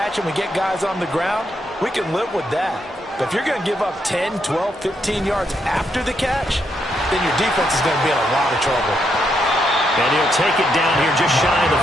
and we get guys on the ground, we can live with that. But if you're going to give up 10, 12, 15 yards after the catch, then your defense is going to be in a lot of trouble. And he'll take it down here just shy of the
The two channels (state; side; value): normal; both; correlation 0.78